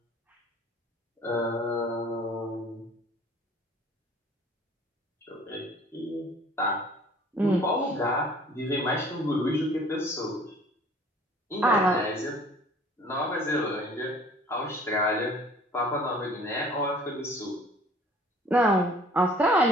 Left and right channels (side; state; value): both; normal; correlation 0.51